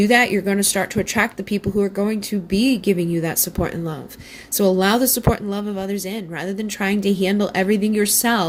that, you're going to start to attract the people who are going to be giving you that support and love. So allow the support and love of others in, rather than trying to handle everything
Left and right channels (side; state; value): both; identical; correlation 1.00